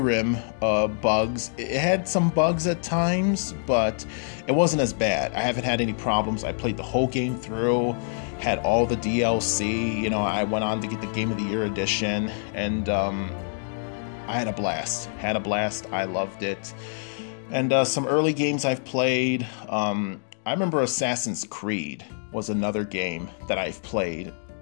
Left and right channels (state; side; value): silent; right; digital silence